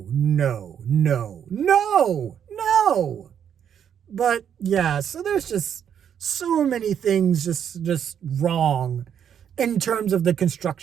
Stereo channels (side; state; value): left; quieter; 8.6 dB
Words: no, no, no, no. But yeah, so there's just so many things just wrong in terms of the